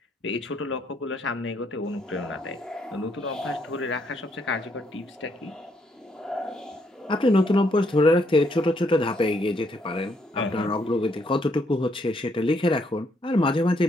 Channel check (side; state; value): both; normal; correlation 0.73